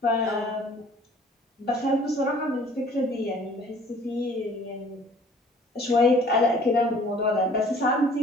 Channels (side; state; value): both; normal; correlation 0.53